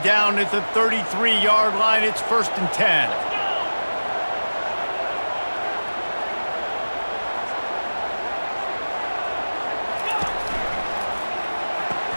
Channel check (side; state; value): both; inverted; correlation -1.00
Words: down at the 33-yard line, it's 1st and 10.